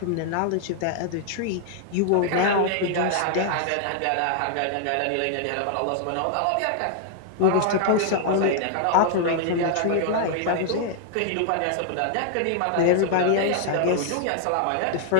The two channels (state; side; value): different; both; correlation 0.00